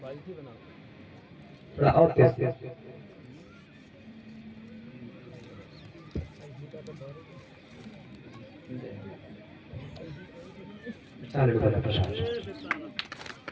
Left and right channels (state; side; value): identical; both; correlation 1.00